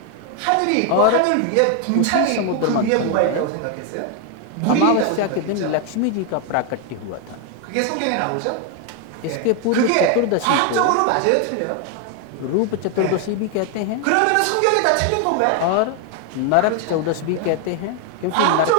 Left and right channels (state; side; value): different; both; correlation 0.01